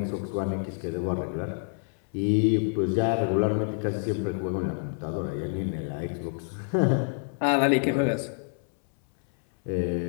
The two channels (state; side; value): silent; right; 60 dB below the other